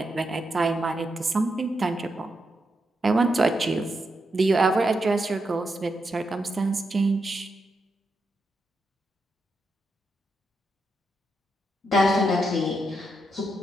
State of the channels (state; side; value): normal; both; correlation 0.84